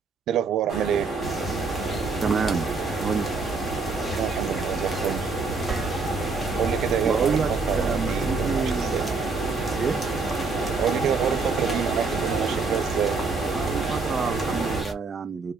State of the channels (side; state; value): left; quieter; 4.3 dB